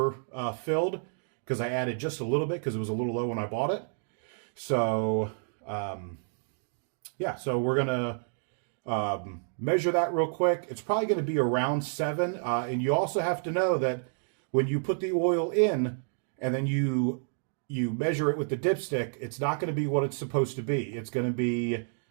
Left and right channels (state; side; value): silent; left; digital silence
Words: filled because I added just a little bit because it was a little low when I bought it. So, yeah, so we're going to measure that real quick. It's probably going to be around 7. And you also have to know that when you put the oil in and then you measure it with the dipstick, it's not going to be what it's supposed to be. It's going to be